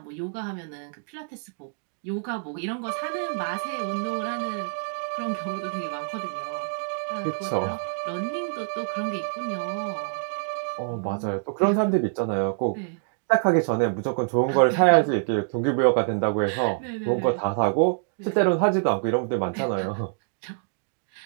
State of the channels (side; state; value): left; silent; digital silence